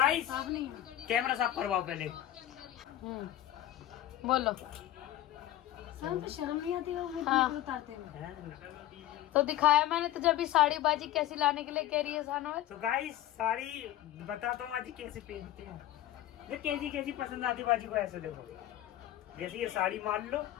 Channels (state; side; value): quieter; right; 13.5 dB